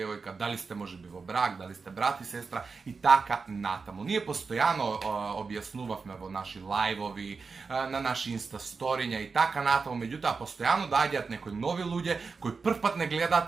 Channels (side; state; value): left; quieter; 4.7 dB